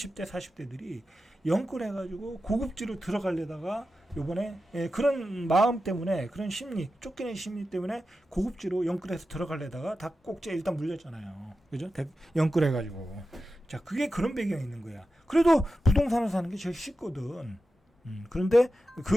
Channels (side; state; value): both; normal; correlation 0.91